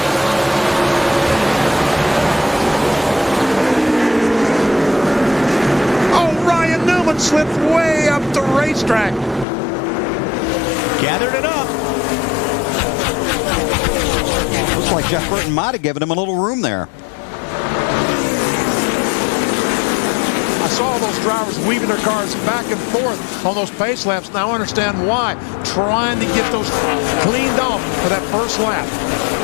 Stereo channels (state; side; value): drops out; right; at 9.5 s